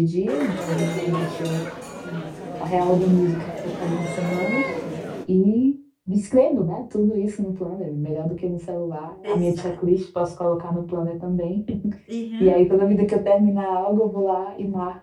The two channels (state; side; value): identical; both; correlation 1.00